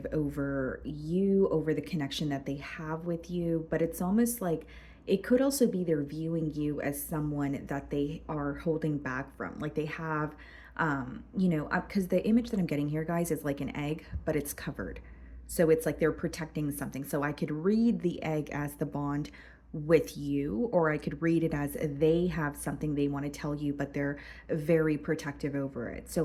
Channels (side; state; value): both; identical; correlation 1.00